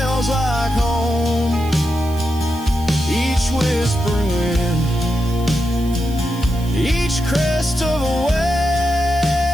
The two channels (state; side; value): noise; right; hiss, 18 dB below the sound